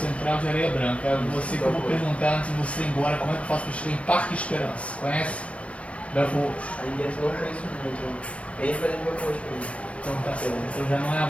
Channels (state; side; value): late; right; 0.063 ms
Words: de Areia Branca. Você que eu vou perguntar antes de você ir embora, como é que eu faço para chegar em Parque Esperança? Conhece? Belco Roxo. Aí dentro não conheço muito. Vem para dentro do Belco Roxo comigo. Então tá certo. Então já não é a